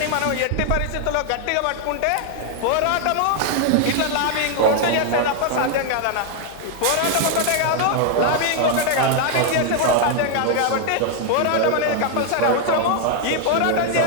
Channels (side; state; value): both; different; correlation 0.00